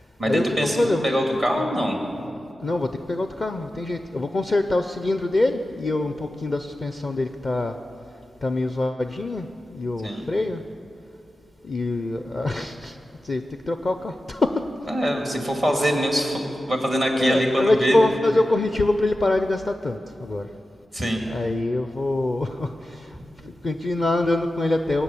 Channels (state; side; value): normal; both; correlation 0.93